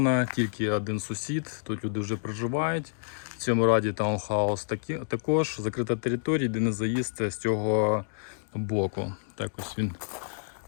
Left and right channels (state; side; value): silent; right; digital silence